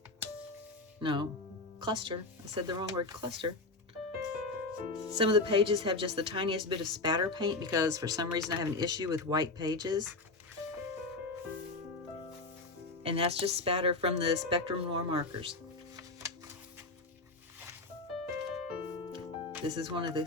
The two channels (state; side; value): quieter; right; 3.3 dB